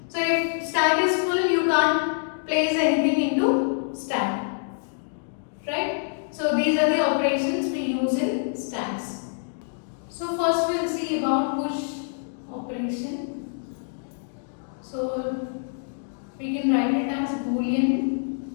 So if stack is full, you can't place anything into stack. Right? So these are the operations we use in stacks. So first we'll see about push operation. So we can write it as Boolean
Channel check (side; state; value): right; silent; digital silence